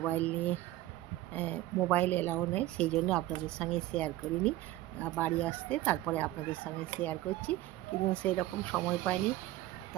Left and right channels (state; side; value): quieter; left; 15.9 dB